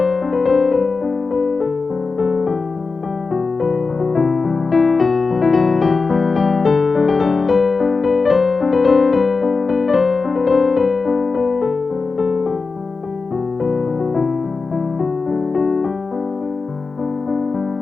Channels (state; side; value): quieter; right; 4.3 dB